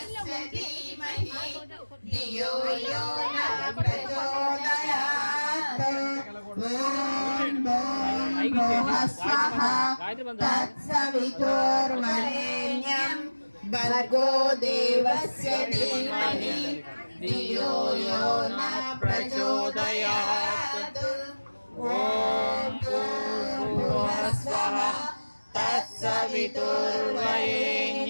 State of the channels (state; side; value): inverted; both; correlation -1.00